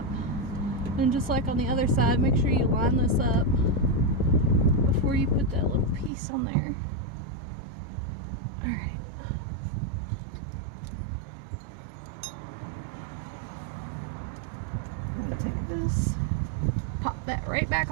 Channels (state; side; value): drops out; left; at 6.1 s